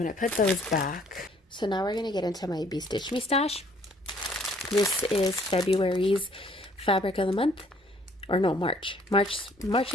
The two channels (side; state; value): both; normal; correlation 0.61